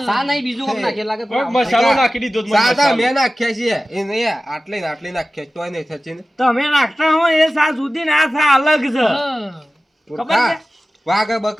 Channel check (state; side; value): normal; both; correlation 0.95